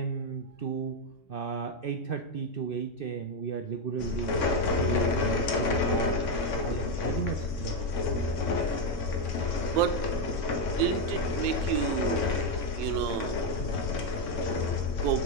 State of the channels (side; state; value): right; late; 3.6 ms